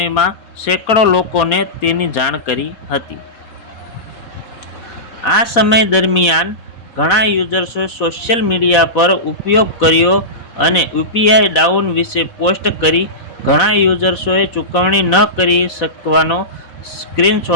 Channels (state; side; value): late; right; 4.1 ms